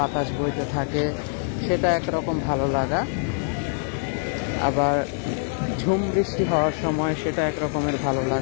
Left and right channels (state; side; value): silent; right; 62 dB below the other